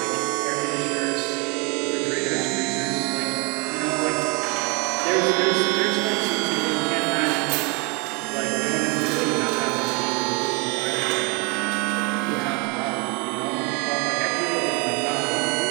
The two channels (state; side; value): quieter; left; 30.4 dB